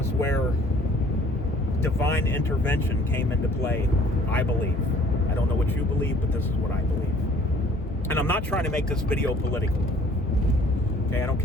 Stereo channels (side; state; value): both; normal; correlation 0.55